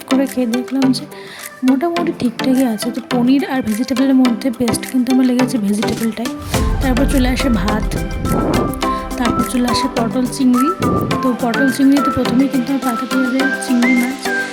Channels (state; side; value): identical; both; correlation 1.00